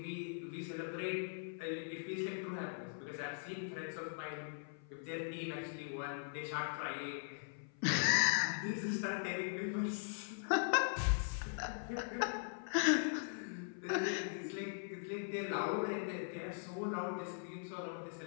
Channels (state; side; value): silent; right; 51 dB below the other